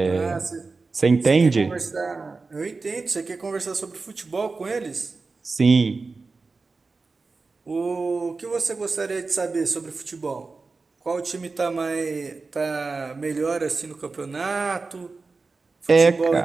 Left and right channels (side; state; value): left; quieter; 4.0 dB